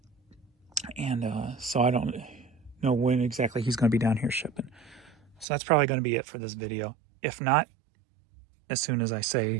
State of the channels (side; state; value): left; drops out; at 5.5 s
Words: And so I don't know when exactly he's going to be down here shipping. So that's probably going to be it for this video. If not, as soon as I